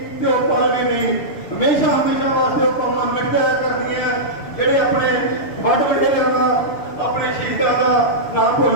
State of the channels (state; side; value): late; right; 6.9 ms